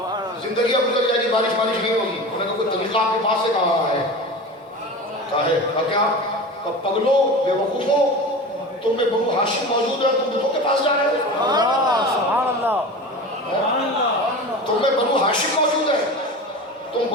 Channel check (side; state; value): both; normal; correlation 0.31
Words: زندگی اب گزر جائے گی، بارش نہیں ہوگی۔ انہوں نے کہا کوئی طریقہ آپ کے پاس سے کہا ہے؟ کہا ہے کیا؟ پگلو بے وقوفو، تم میں بنو ہاشم موجود ہے، تم بتوں کے پاس جا رہے ہو؟ سبحان اللہ، تم میں بنو ہاشم موجود ہے، تم